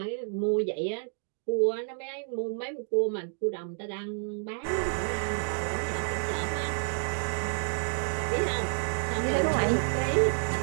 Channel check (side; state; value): left; silent; 56 dB below the other